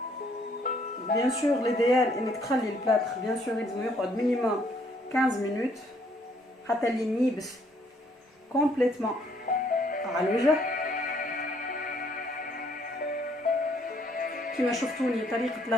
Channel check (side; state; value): both; normal; correlation 0.66